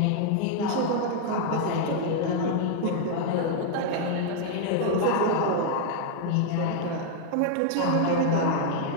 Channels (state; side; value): different; both; correlation 0.00